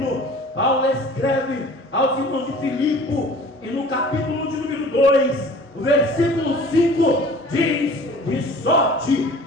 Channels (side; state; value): both; normal; correlation 0.46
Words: Paulo escreve aos irmãos de Filipe, e no capítulo de número 2, o versículo 5 diz: de sorte